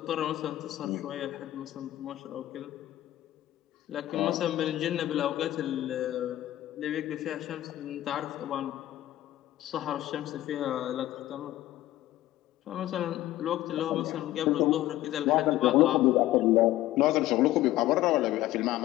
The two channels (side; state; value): right; quieter; 14.8 dB